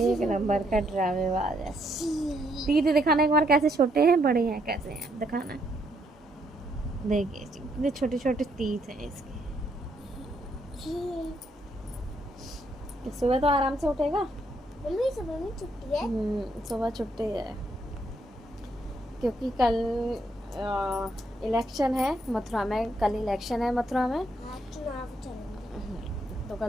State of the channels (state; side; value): normal; both; correlation 0.73